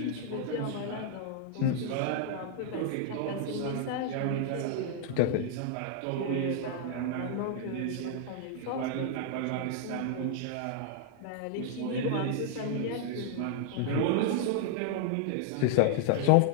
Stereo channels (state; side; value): different; both; correlation 0.00